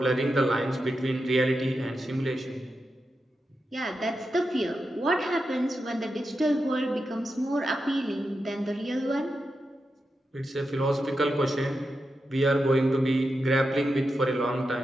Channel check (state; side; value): normal; both; correlation 0.88